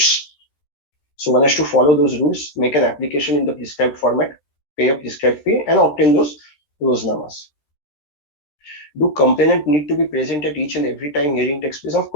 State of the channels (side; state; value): right; late; 13 ms